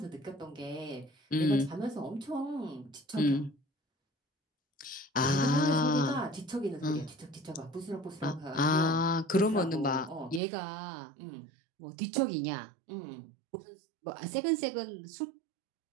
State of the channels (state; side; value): drops out; left; at 10.4 s